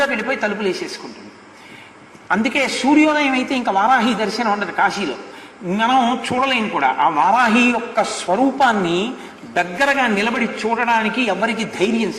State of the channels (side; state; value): both; identical; correlation 1.00